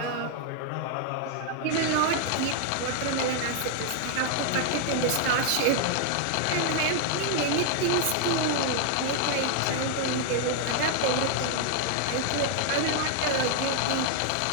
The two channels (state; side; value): different; both; correlation 0.00